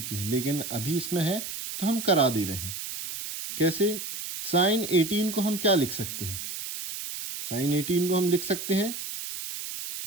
है, लेकिन अभी इसमें है तो हम करा दे रहे हैं। कैसे, साइन 18 को हम क्या लिख सकते हैं, साइन 18 को हम लिख सकते हैं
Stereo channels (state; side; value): noise; right; hiss, 7 dB below the sound